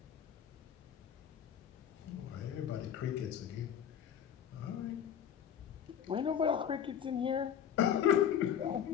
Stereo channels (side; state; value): right; quieter; 8.9 dB